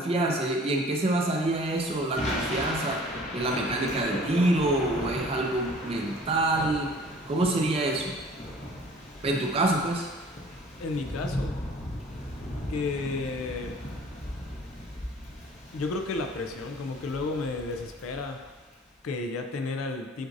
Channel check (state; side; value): normal; both; correlation 0.50